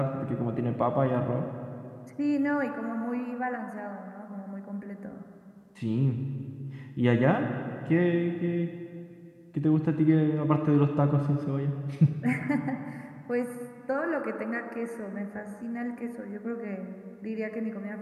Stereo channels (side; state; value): both; identical; correlation 1.00